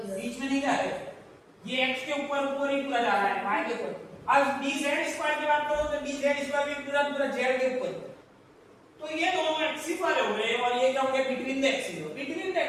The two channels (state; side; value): identical; both; correlation 1.00